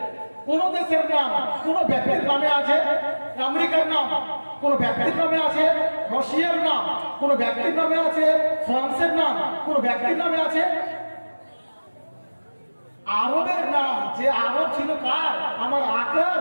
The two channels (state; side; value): inverted; both; correlation -1.00